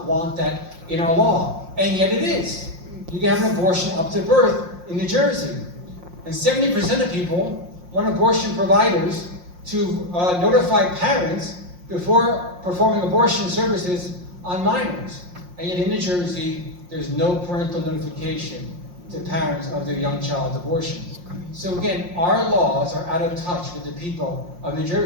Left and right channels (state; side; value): late; left; 5.6 ms